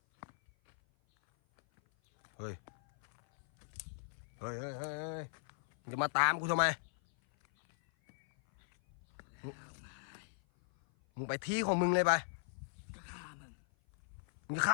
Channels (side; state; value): right; silent; 53 dB below the other